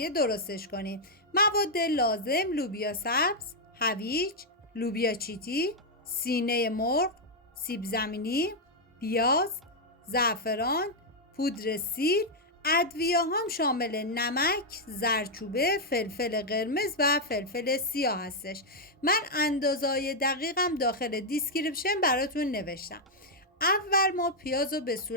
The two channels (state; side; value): normal; both; correlation -0.02